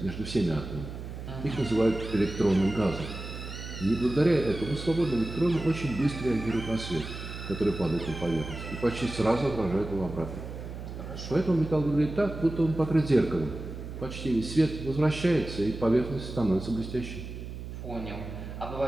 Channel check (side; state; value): right; noise; hum, 9 dB below the sound